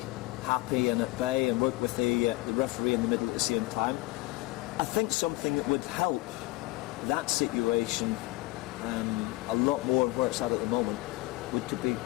happy and at bay and work with the referee in the middle at the same time. I think something that would help that situation a lot more where it's at the moment would to be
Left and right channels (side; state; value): right; quieter; 19.8 dB